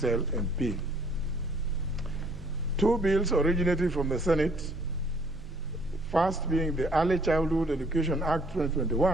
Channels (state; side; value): noise; right; hum, 18 dB below the sound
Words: MP. 2 bills originating from the Senate, first being the Early Childhood Education Act